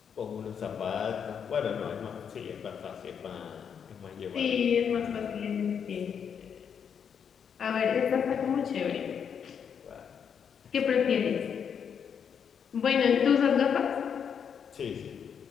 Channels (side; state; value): right; quieter; 7.4 dB